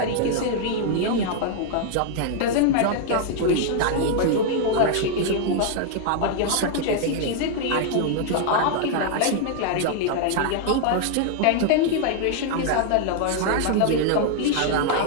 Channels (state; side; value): different; both; correlation 0.00